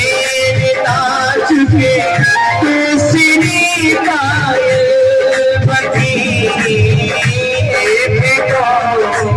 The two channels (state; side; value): identical; both; correlation 1.00